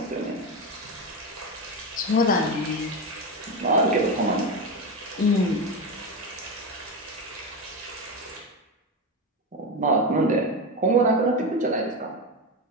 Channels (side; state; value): both; normal; correlation 0.16